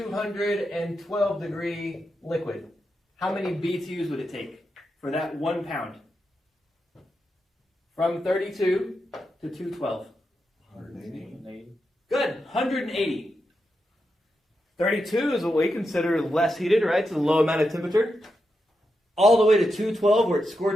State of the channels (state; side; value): normal; both; correlation 0.86